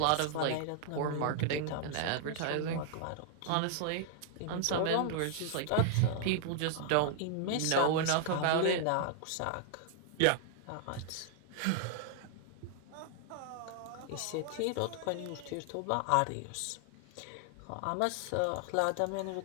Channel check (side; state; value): both; different; correlation 0.00